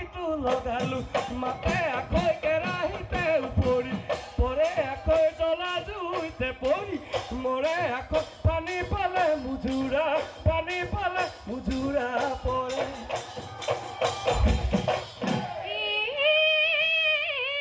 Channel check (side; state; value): both; identical; correlation 1.00